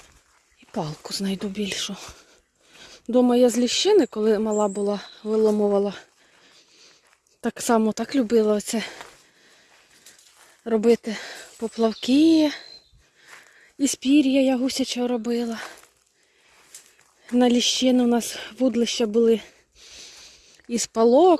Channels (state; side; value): identical; both; correlation 1.00